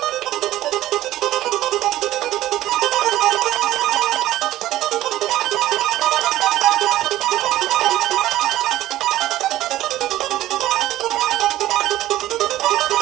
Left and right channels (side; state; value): left; quieter; 14.7 dB